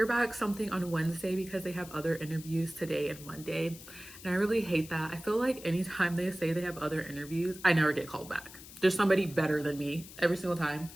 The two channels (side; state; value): left; noise; hiss, 16 dB below the sound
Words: back something on Wednesday because they have other interviews today and Monday, and I really hate that. I feel like anytime they say they have other interviews, I never get called back. There's somebody better than me every single time.